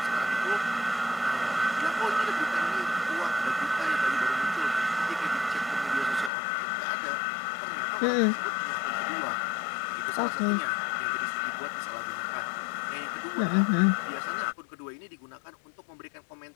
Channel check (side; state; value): right; drops out; at 6.3 s